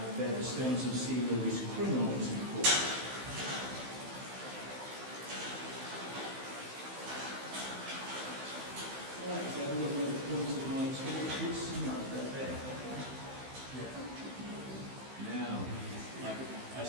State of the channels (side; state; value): left; late; 15 ms